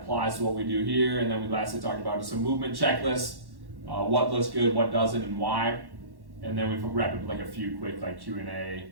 applies to what we do here. And then we lastly talked about just a movement checklist, what looks good, what doesn't, and why. And then we wrap up like a few quick like Q&A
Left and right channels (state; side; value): late; left; 1.1 ms